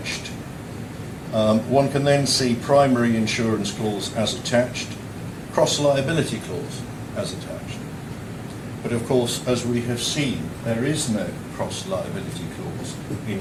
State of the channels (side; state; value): both; identical; correlation 1.00